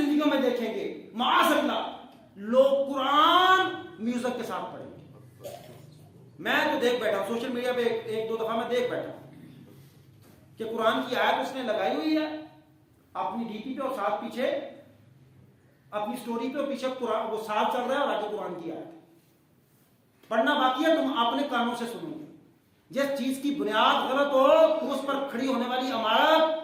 میں دیکھیں گے معاذ اللہ لوگ قرآن میوزک کے ساتھ پڑھیں گے۔ میں تو دیکھ بیٹھا ہوں سوشل میڈیا پہ، ایک دو دفعہ میں دیکھ بیٹھا ہوں کہ قرآن کی آیت اس نے لگائی ہوئی ہے اپنی ڈی پی پہ، اور ساتھ پیچھے اپنی سٹوری پہ، اور پیچھے قرآن وہ ساتھ چل رہا ہے، اور آگے قرآن کی آیت پڑھنا باقی ہے، تم اپنے کانوں سے سنو گے۔ جس چیز کی بنیاد غلط ہو تو اس پر کھڑی ہونے والی عمارت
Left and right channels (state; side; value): identical; both; correlation 1.00